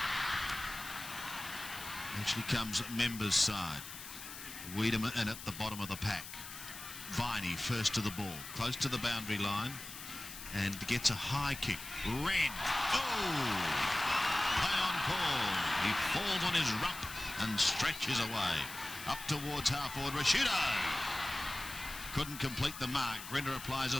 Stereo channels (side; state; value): left; noise; hiss, 11 dB below the sound